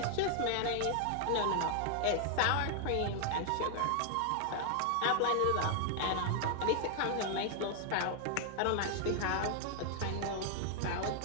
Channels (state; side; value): different; both; correlation 0.00